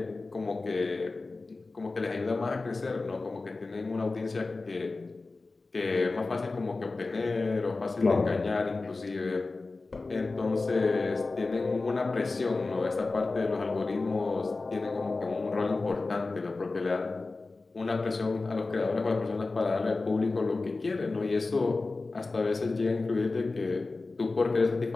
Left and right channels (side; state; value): right; quieter; 3.6 dB